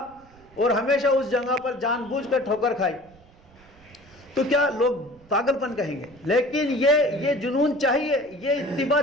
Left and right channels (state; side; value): noise; right; rumble, 27 dB below the sound